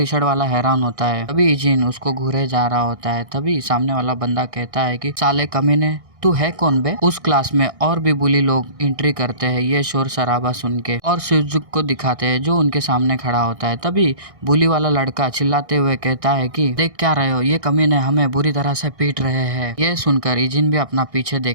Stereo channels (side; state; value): left; late; 1.6 ms